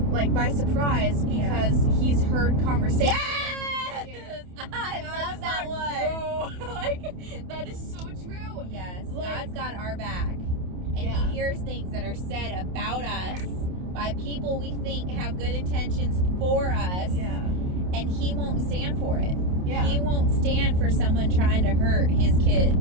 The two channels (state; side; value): late; left; 28 ms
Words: by surprise, because he's heard conversations. Yes! I love that one. That is so true. Yes, God's got our back. And Yeah. he hears things that are said about us by people we think have good intentions for us. Yeah. And he won't stand for it. Yeah. He won't stand for someone trying to hurt his